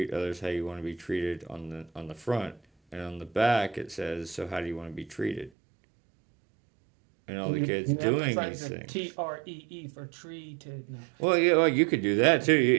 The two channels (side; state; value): left; drops out; at 5.5 s